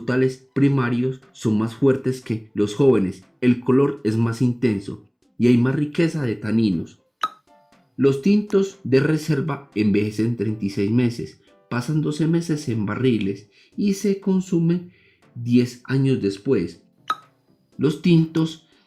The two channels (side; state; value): both; identical; correlation 1.00